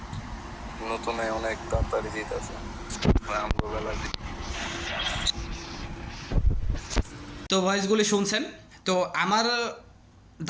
নতুনে অনেক তাড়াতাড়ি দিতেছে আমগো বেলা। তো ভয়েসগুলি শুনছেন। তো আমার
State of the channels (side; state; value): both; identical; correlation 1.00